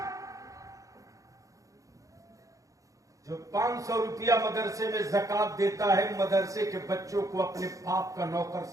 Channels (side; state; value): left; late; 0.16 ms